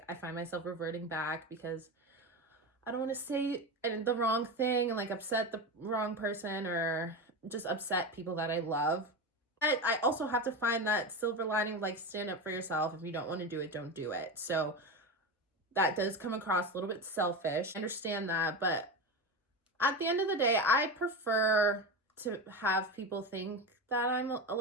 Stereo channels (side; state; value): both; normal; correlation 0.20